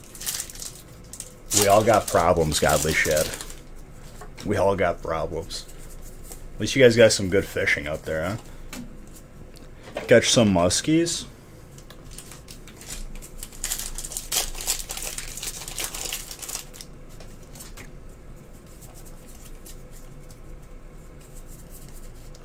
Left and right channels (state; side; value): identical; both; correlation 1.00